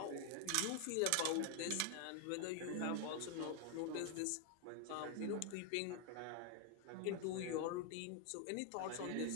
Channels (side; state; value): both; different; correlation 0.01